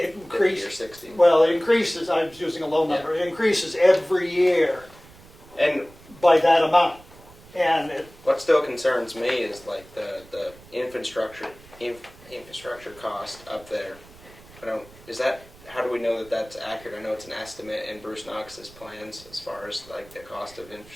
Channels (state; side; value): noise; right; rumble, 23 dB below the sound